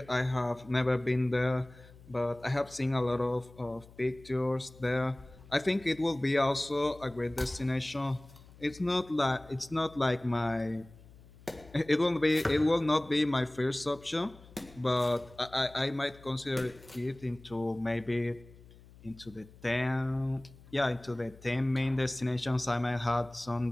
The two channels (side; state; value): left; noise; hum, 22 dB below the sound